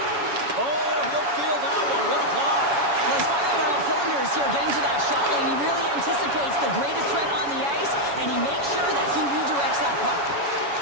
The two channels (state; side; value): late; left; 7.1 ms